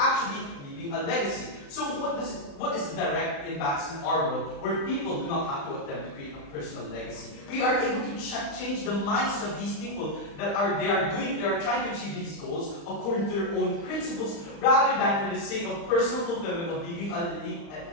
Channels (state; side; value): late; right; 35 ms